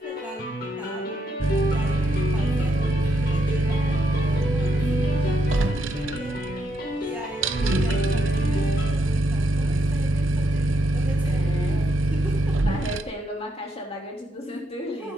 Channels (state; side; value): normal; both; correlation 0.77